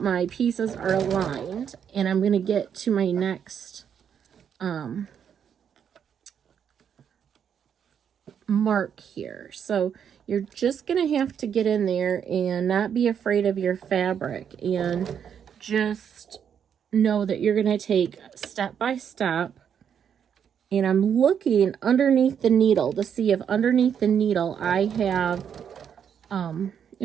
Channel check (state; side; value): quieter; left; 8.1 dB